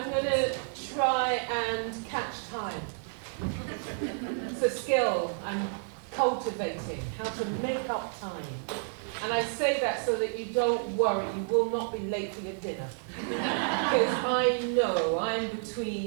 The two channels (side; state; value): left; silent; 58 dB below the other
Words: going to try and catch time. It's a skill I'm cultivating, how to make up time. And I say that so that you don't worry, you will not be late for your dinner. Because I know I'm